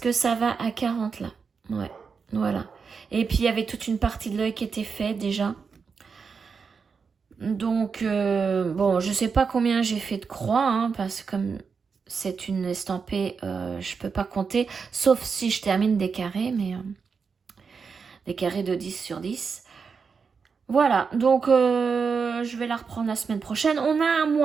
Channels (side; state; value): left; quieter; 5.5 dB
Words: ça va à 40 là. Ouais, voilà. Et puis il y avait toute une partie de l'œil qui était faite déjà. Donc, bon, je sais pas combien j'ai fait de croix, hein, parce que comme c'est une estampée, je peux pas compter, sauf si je termine des carrés, mais des carrés de 10 sur 10. Voilà, donc je vais la reprendre la semaine prochaine. On a un